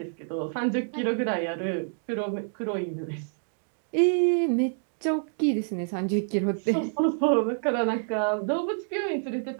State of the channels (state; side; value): silent; left; digital silence